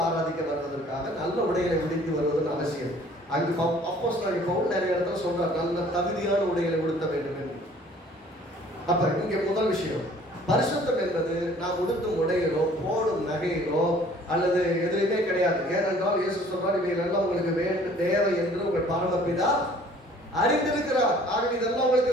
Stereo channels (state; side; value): normal; both; correlation 0.54